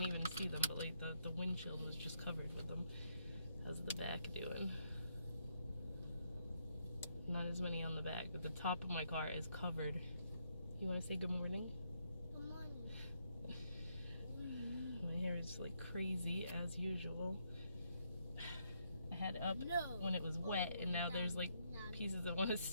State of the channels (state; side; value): inverted; both; correlation -0.76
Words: even see them, but like the windshield was just covered with them. How's the back doing? Not as many on the back, but the top of my car is covered. You want to say good morning? Good morning. My hair is like crazy as usual. I had it up when it was wet, and now there's like pieces that want to